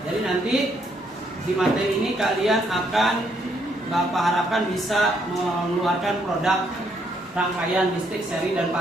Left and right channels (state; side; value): normal; both; correlation 0.72